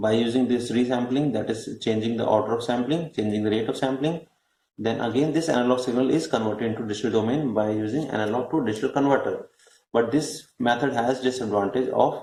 using this resampling, that is changing the order of sampling, changing the rate of sampling. Then again this analog signal is converted into digital domain by using analog to digital converter. But this method has disadvantage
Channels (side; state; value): both; identical; correlation 1.00